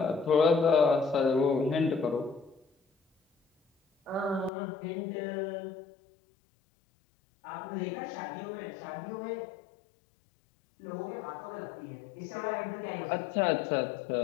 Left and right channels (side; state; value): right; drops out; at 4.5 s